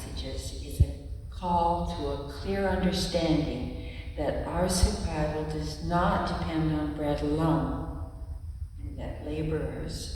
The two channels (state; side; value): identical; both; correlation 1.00